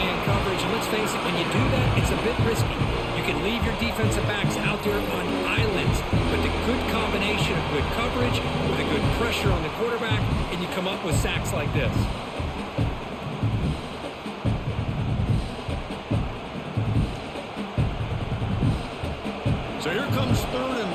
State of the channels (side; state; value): both; identical; correlation 1.00